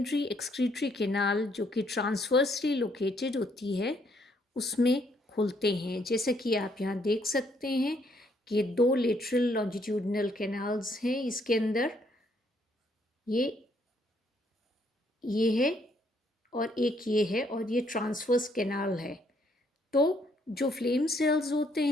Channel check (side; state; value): both; normal; correlation 0.69